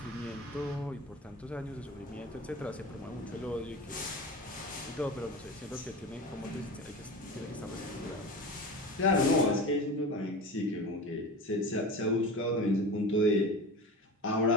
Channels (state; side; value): normal; both; correlation 0.30